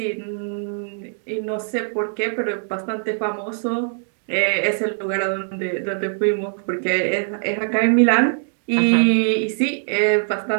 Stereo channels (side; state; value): left; silent; 61 dB below the other